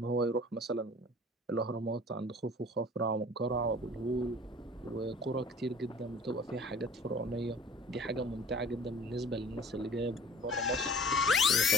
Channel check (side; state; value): both; normal; correlation 0.47